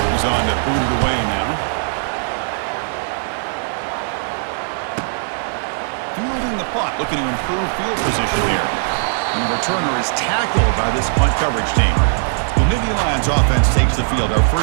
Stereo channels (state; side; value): silent; left; 58 dB below the other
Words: He's on to boot it away now. Fielding the punt, looking to improve field position here. And the returner is tackled by this punt coverage team. The Nittany Lions offense takes the field. Our